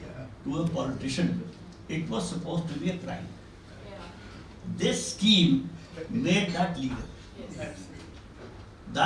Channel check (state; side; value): identical; both; correlation 1.00